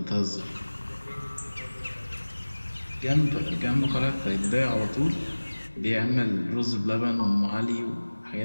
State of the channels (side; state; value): both; inverted; correlation -1.00